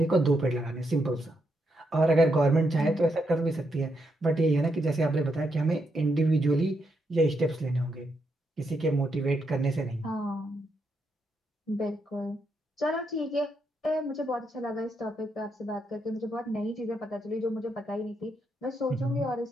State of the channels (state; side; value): normal; both; correlation 0.80